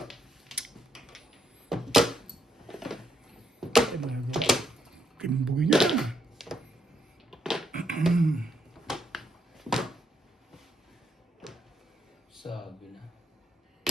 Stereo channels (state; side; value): normal; both; correlation 0.76